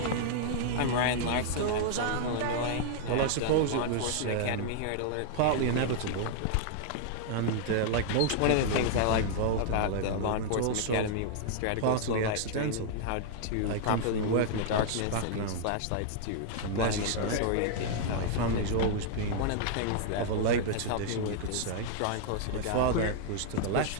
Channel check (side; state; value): both; different; correlation -0.01